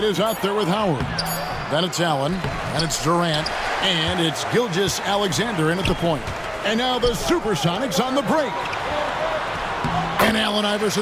is out there with Howard. Then it's Allen, and it's Durant, and it's Gilgeous-Alexander in at the point. And now the Supersonics on the break. And Allen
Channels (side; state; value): both; identical; correlation 1.00